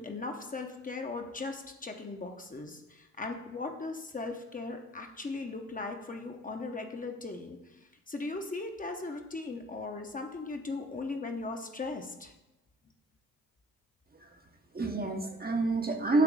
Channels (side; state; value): both; normal; correlation 0.54